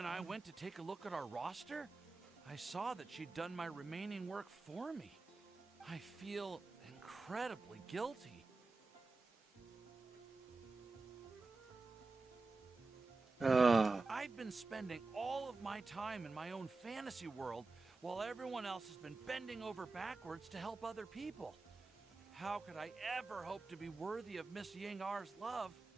I went to take a look at our roster, I saw that she'd done my remaining work for me. I feel incredibly guilty. I've been spending all of my time in my own fantasy world while everyone else has been bending over backwards to help other people. How could I ever hope to be worthy of Miss Ying R's love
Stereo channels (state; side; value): quieter; left; 3.7 dB